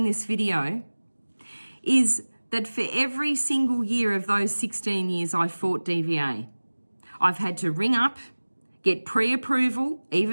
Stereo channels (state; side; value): inverted; both; correlation -1.00